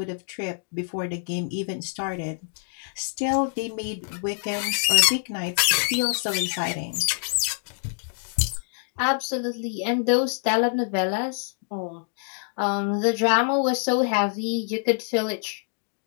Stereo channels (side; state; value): right; silent; digital silence